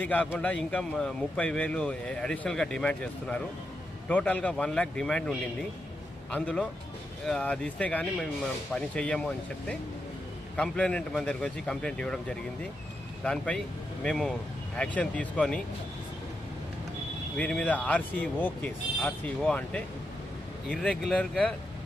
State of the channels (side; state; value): both; normal; correlation 0.85